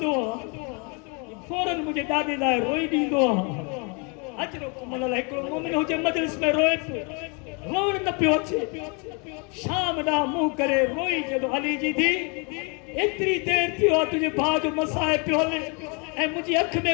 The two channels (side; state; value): right; quieter; 33.5 dB